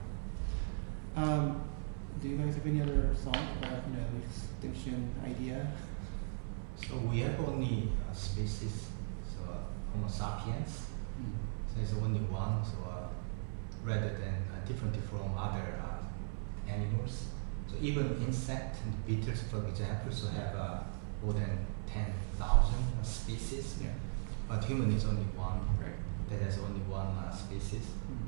Do you guys have any other thought about extinction idea? So we have only species, so Homo sapiens. So it's only one. So rather than different from other animals. So even insect and beetles, for example, so have more than 10,000 species. Yeah. But human is only one. Right. That has only one species.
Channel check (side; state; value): left; silent; 52 dB below the other